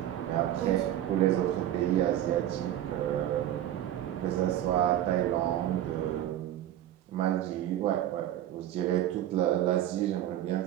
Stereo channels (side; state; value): left; quieter; 12.2 dB